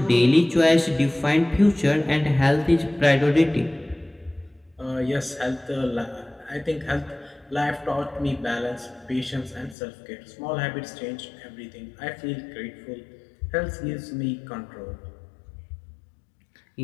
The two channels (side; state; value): right; drops out; at 9.8 s